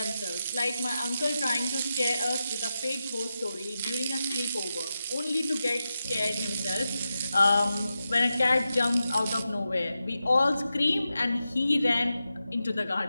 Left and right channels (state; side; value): inverted; both; correlation -0.90